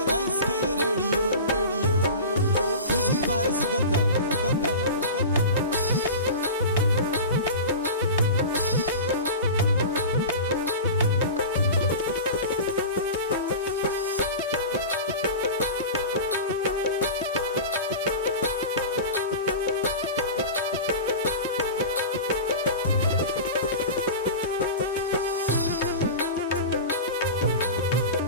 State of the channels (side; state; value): both; inverted; correlation -0.30